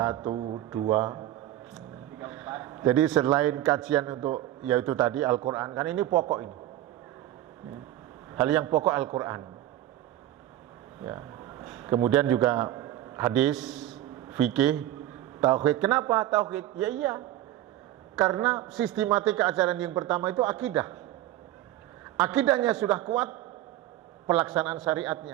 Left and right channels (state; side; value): quieter; left; 13.9 dB